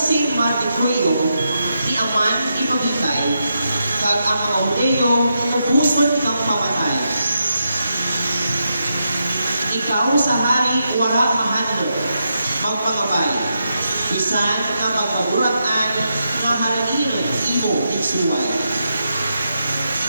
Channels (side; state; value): both; inverted; correlation -0.84